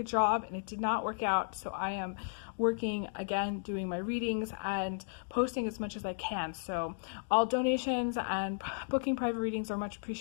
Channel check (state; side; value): silent; right; digital silence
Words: job and it did not work out, so I am working again, doing my readings and posting as much as I can. So all donations and booking private readings are much